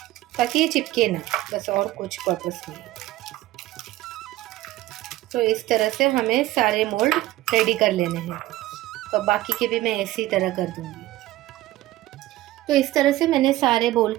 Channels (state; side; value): quieter; left; 16.3 dB